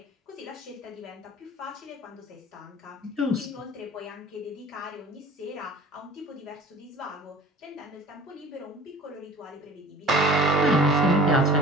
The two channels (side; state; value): both; normal; correlation 0.43